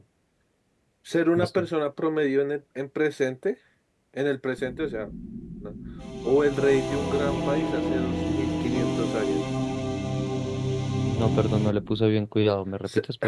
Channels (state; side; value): identical; both; correlation 1.00